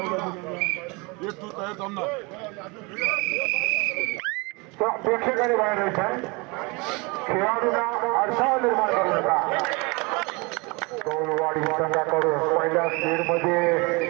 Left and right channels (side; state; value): left; quieter; 27.8 dB